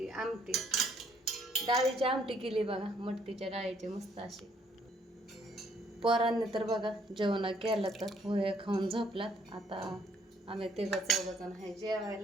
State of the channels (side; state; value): both; normal; correlation 0.67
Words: डाळीची आमटी केली बघा, मटकीच्या डाळीची मस्त अशी. पोरांनी तर बघा जेवण केलं, तर पोहे खाऊन झोपलात. आता आम्ही 3-4 आहे